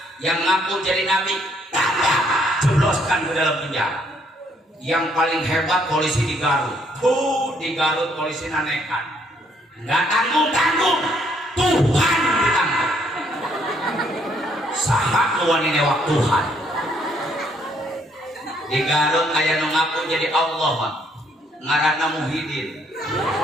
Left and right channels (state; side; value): normal; both; correlation 0.68